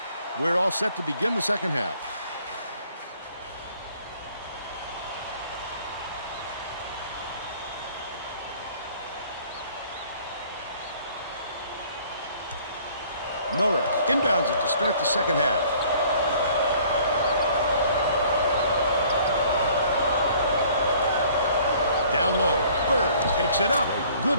We're all set to begin the second half. Norris inbounds it to start the second half. Down low, Bird takes it up. Good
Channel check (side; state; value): both; inverted; correlation -0.56